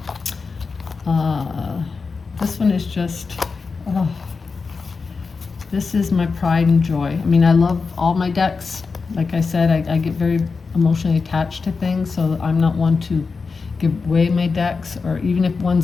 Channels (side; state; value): right; quieter; 4.7 dB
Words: This one is just, This is my pride and joy. I mean, I love all my decks. Like I said, I get very emotionally attached to things, so I'm not one to give away my decks, or even if